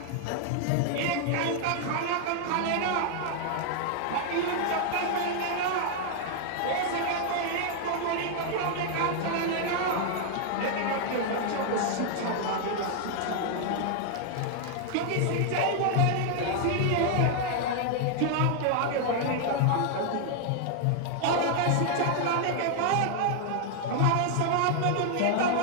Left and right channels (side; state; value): both; different; correlation 0.00